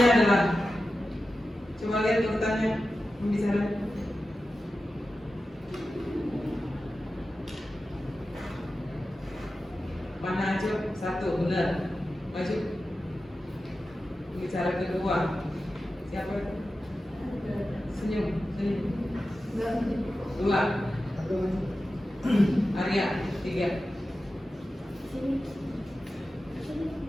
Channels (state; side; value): normal; both; correlation 0.93